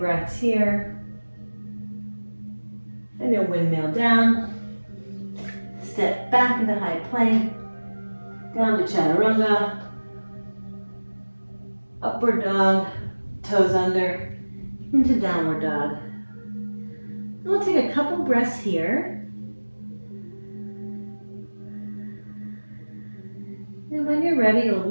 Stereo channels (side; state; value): both; inverted; correlation -1.00